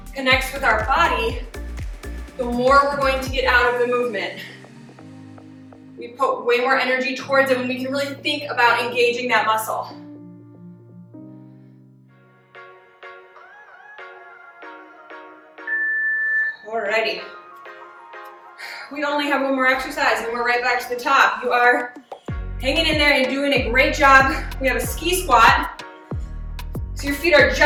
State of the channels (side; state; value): both; identical; correlation 1.00